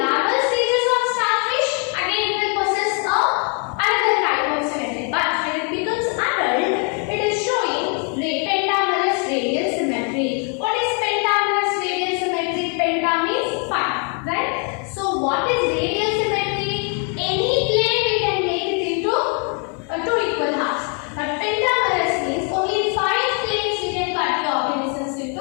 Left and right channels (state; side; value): quieter; right; 39.3 dB